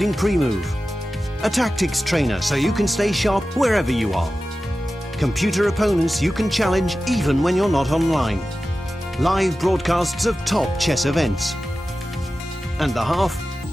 pre-move. A tactics trainer so you can stay sharp wherever you are. Computer opponents you can challenge even when you're not online. Live broadcasts of top chess events. And the half?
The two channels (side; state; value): both; normal; correlation 0.94